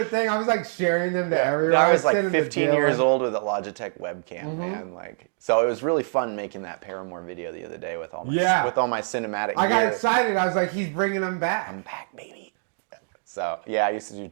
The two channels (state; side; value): silent; left; 62 dB below the other